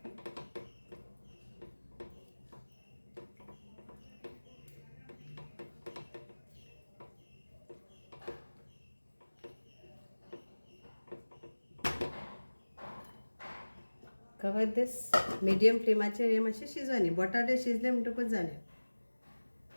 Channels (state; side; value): inverted; both; correlation -1.00